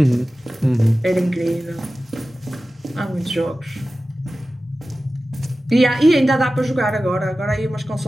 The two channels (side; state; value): both; normal; correlation 0.95